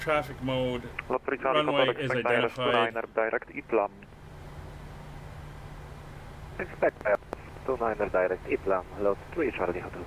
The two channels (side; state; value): both; identical; correlation 1.00